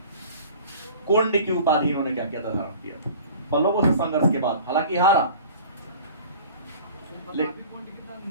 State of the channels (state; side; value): inverted; both; correlation -0.43